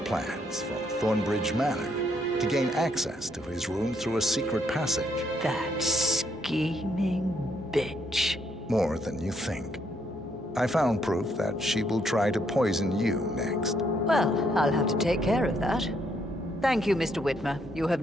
from Thornbridge Manor to gain access to his room through a secret passage. That scheming bitch. More than you think. I found proof that she will try to poison you next. Well, I'll have to take care of that. Thank you, Mr. Whitmer. You have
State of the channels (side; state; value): both; normal; correlation 0.73